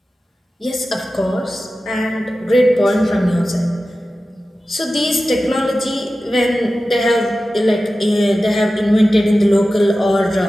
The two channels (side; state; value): both; normal; correlation 0.94